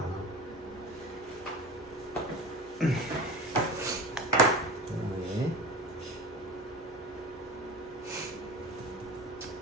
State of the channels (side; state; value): both; normal; correlation 0.33